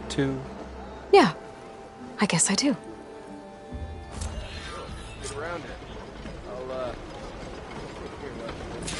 to? Yeah, I guess I do. Get around it. I'll,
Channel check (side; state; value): both; identical; correlation 1.00